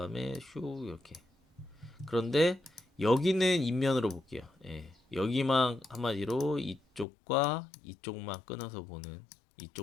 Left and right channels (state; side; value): drops out; right; at 7.1 s